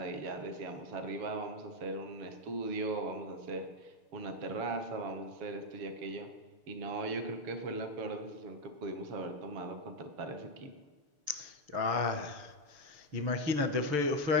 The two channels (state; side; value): late; left; 6.8 ms